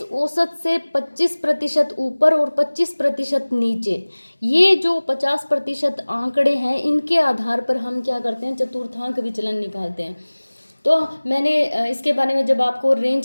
औसत से 25% ऊपर और 25% नीचे, ये जो 50% आंकड़े हैं इनके आधार पर हम क्या करते हैं, चतुर्थांक विचलन निकालते हैं। तो मैंने इसके बारे में जब आपको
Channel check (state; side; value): inverted; both; correlation -1.00